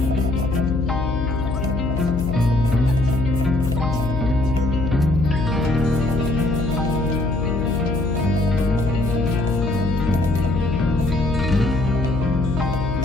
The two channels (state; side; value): noise; left; hum, 3 dB below the sound